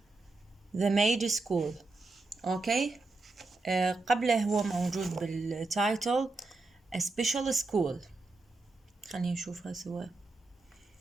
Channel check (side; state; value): left; quieter; 3.4 dB